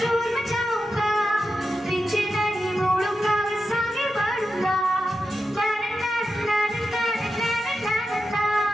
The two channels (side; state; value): both; normal; correlation 0.89